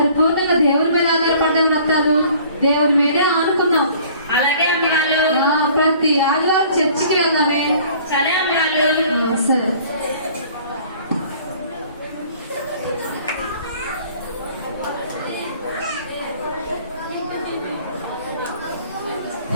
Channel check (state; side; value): inverted; both; correlation -0.53